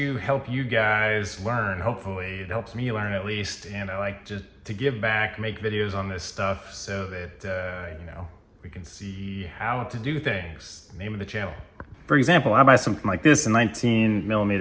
help you guys learn. Hopefully it helps me learn at least. And I like just to give back, make videos on this stuff so that, we can see how to do things. Name of the channel. For example, I buy something like this, a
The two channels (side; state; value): both; identical; correlation 1.00